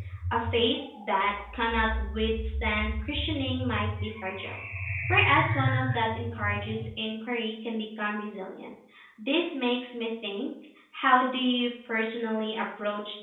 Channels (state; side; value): identical; both; correlation 1.00